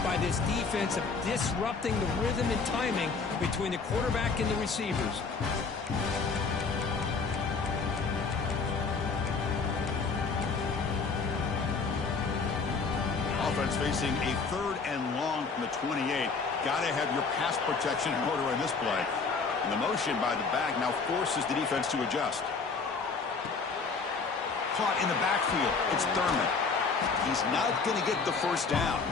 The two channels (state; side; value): quieter; right; 4.7 dB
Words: by this defense of disrupting the rhythm and timing between the quarterback and the receivers. Offense facing a 3rd and long from the 28. Got to have your pass protection in order in this play. And the motion by the back now forces the defense to adjust. Caught in the backfield. It's Thurman. He's not going to get the 1st down.